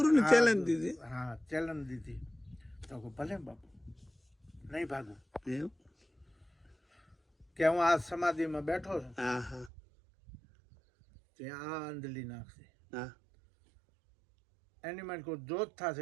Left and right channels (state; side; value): drops out; left; at 9.7 s